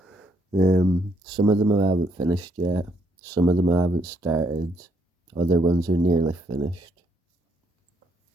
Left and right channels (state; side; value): normal; both; correlation 0.72